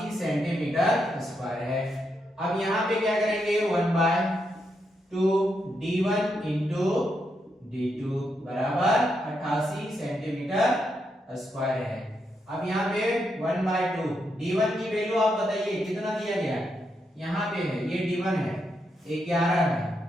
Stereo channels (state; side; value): normal; both; correlation 0.81